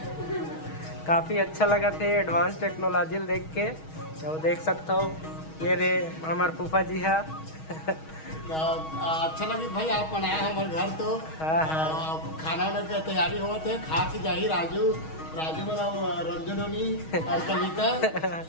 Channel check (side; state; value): right; late; 6.3 ms